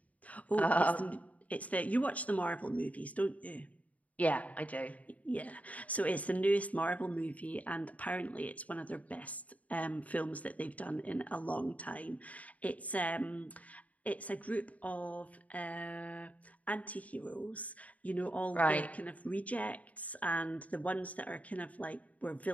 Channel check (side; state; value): right; late; 0.070 ms